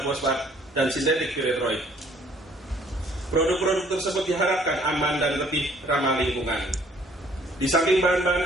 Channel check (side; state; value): both; normal; correlation 0.60